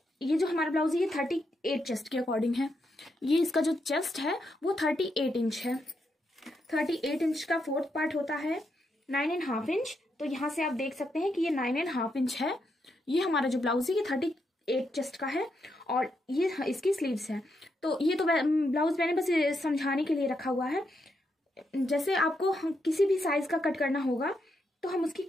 ये जो हमारा ब्लाउज है ये 38 चेस्ट के अकॉर्डिंग है। ये इसका जो चेस्ट है वो 38 इंच है। 38 इंच का फोर्थ पार्ट होता है 9.5 इंच। तो यहाँ से आप देख सकते हैं कि ये 9.5 इंच है। ये हमारा जो ब्लाउज है ये 38 चेस्ट का है और ये इसकी स्लीव्स है। तो ये तो ब्लाउज मैंने बस समझाने के लिए रखा हुआ है। जैसे आपको किसी भी साइज का कट करना होगा तो हम उसकी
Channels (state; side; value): normal; both; correlation 0.81